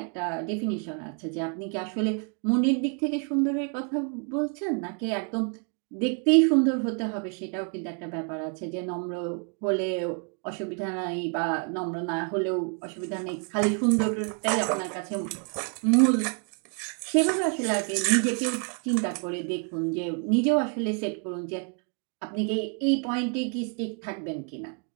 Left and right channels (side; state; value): left; quieter; 40.0 dB